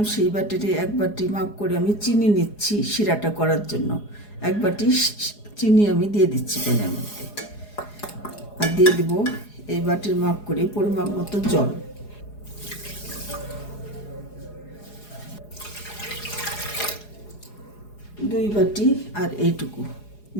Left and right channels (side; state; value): right; late; 4.8 ms